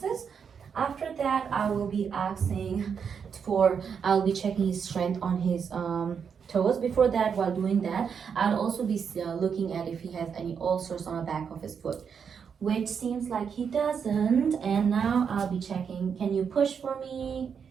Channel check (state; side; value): quieter; left; 6.8 dB